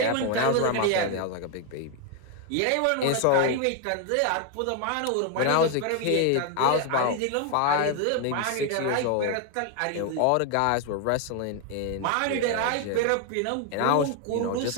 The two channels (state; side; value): different; both; correlation 0.01